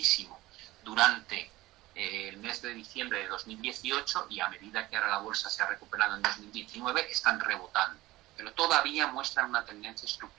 durante el mes de diciembre de 2018 y a medida que ahora la bolsa se ha recuperado en 2019, están rebotando. Pero todavía muestran una tendencia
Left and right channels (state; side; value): quieter; left; 18.1 dB